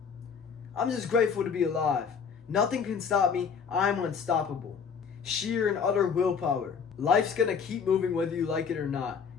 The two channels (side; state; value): right; quieter; 6.3 dB